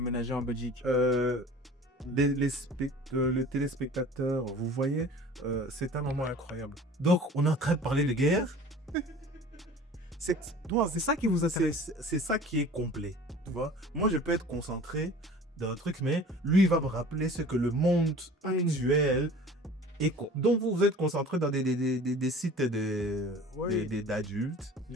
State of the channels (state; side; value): normal; both; correlation 0.44